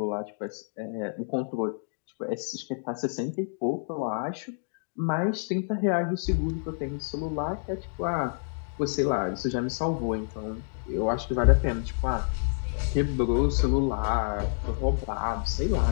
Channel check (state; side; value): silent; right; digital silence